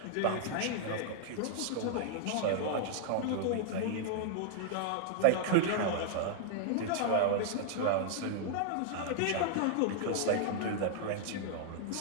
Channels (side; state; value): both; different; correlation -0.01